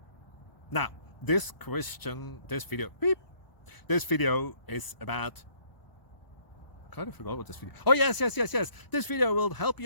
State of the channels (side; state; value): right; late; 1.0 ms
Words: Now, this video is about... I kind of forgot what this video... Oh, yes. This video will help